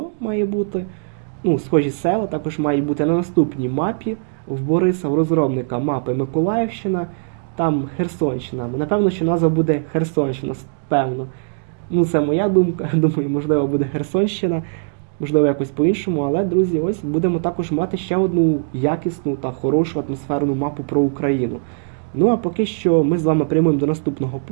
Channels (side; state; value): left; silent; digital silence